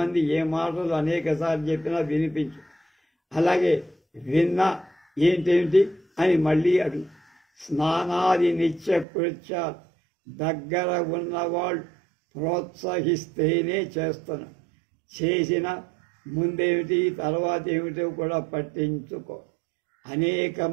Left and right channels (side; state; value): left; drops out; at 9.1 s